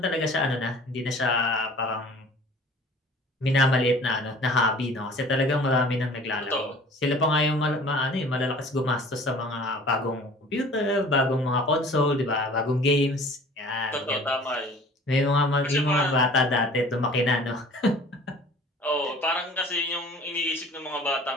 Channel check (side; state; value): both; normal; correlation 0.48